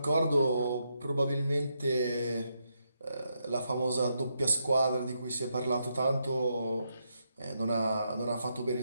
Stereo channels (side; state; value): both; inverted; correlation -0.81